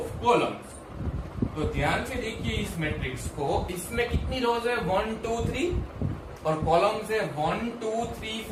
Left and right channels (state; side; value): identical; both; correlation 1.00